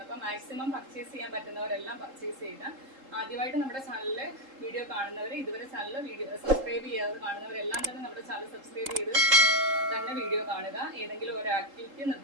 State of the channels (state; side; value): late; left; 3.8 ms